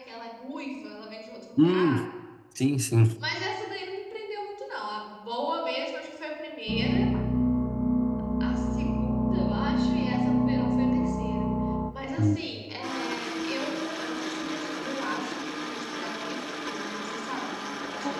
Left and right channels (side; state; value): both; identical; correlation 1.00